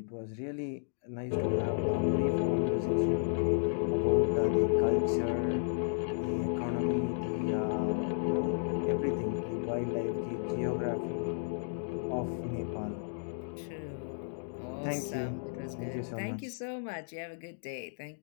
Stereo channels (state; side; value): silent; right; digital silence